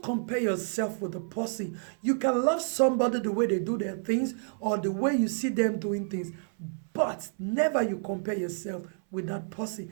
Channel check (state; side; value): silent; left; 58 dB below the other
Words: compare yourself with the person. You can love somebody the way they do their things or the way you see them doing things, but never you compare yourself with that person.